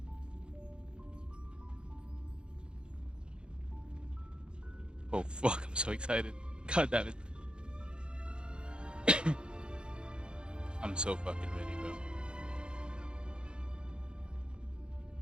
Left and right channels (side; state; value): left; late; 0.051 ms